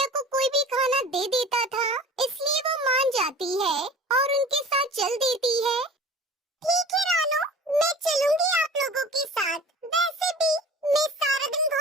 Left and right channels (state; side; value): normal; both; correlation 0.42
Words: को कोई भी खाना दे देता था, इसलिए वो मान जाती है और उनके साथ चल देती है। ठीक है रानू, मैं चलूंगी आप लोगों के साथ। वैसे भी मैं सारा दिन